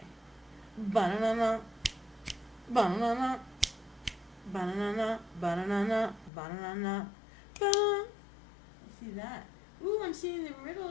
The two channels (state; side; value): drops out; right; at 6.3 s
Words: Banana, banana, banana, banana, banana, banana. See that? Ooh, I'm seeing the